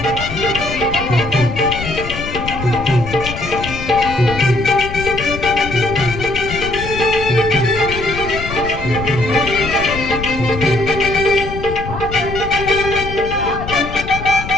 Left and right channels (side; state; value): left; noise; rumble, 9 dB below the sound